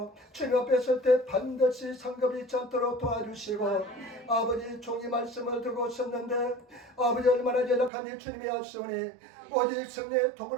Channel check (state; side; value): drops out; left; at 7.9 s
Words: 주님 앞에 설 때 반드시 상급이 있지 않도록 도와주시고 아버지 종이 말씀을 들고 섰는데 아버지 얼마나 연약한지 주님이 아시오니 오직 성령의